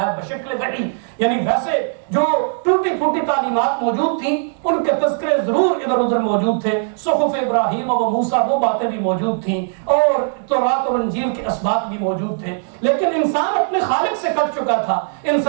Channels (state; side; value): silent; left; digital silence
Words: ہے بشکل وحی۔ یعنی ویسے جو ٹوٹی پھوٹی تعلیمات موجود تھیں ان کے تذکرے ضرور ادھر ادھر موجود تھے، صحف ابراہیم و موسیٰ وہ باتیں بھی موجود تھیں اور تورات اور انجیل کے اسباق بھی موجود تھے، لیکن انسان اپنے خالق سے کٹ چکا تھا،